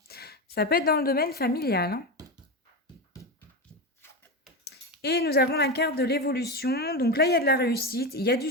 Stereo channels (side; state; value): both; normal; correlation 0.17